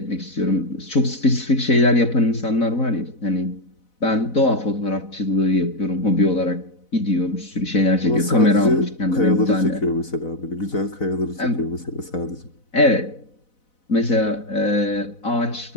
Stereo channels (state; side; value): late; right; 4.0 ms